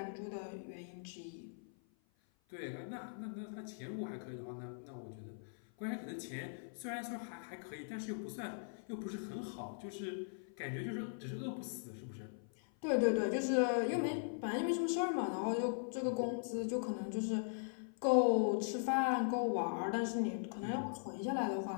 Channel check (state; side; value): silent; right; 51 dB below the other